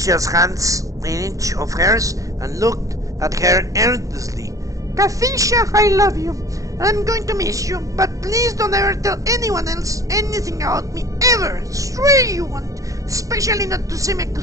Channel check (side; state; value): left; late; 0.16 ms